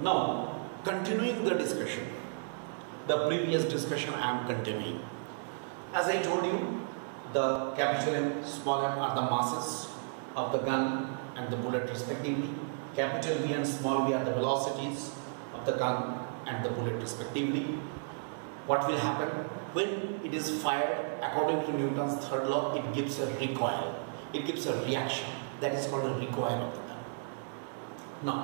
Now, continuing the discussion, the previous discussion I am continuing. As I told you, the capital M, small m are the masses of the gun and the bullet respectively. Capital V and small v are the velocities of the gun and the bullet respectively. What will happen? When it is fired, according to Newton's third law, it gives a recoil. It gives a reaction. That is called a recoil of the gun.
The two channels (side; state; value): left; silent; digital silence